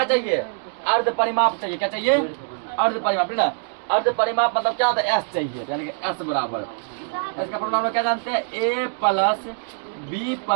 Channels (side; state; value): left; silent; 63 dB below the other